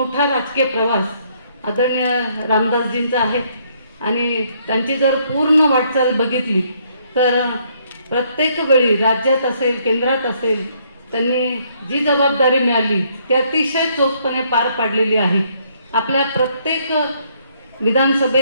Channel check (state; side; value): inverted; both; correlation -0.68